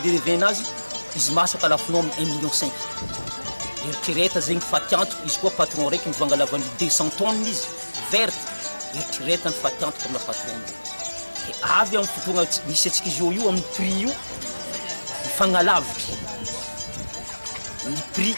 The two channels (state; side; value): inverted; both; correlation -1.00